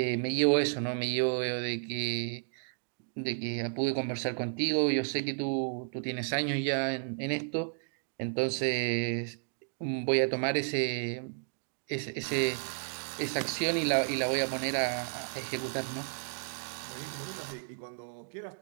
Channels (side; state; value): left; silent; digital silence